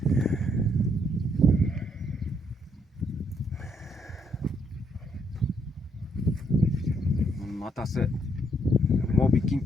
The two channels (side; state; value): both; normal; correlation 0.72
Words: Мунун атасы Моби Кинг